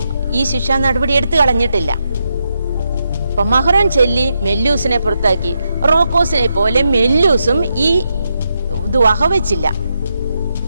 ഈ ശിക്ഷാ നടപടി എടുത്തു കളഞ്ഞിട്ടില്ല. അപ്പൊ മഹ്റോൻ ചൊല്ലി മെല്ലൂസിനെ പുറത്താക്കി. റോക്കോസിനെ പോലെ മെല്ലൂസും ഈ ഇത് വകവെച്ചില്ല.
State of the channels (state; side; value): inverted; both; correlation -0.83